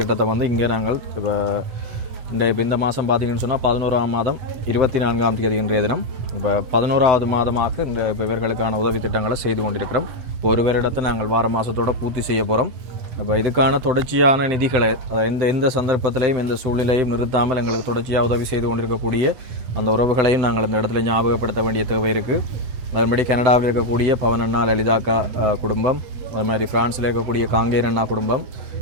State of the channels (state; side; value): late; left; 7.7 ms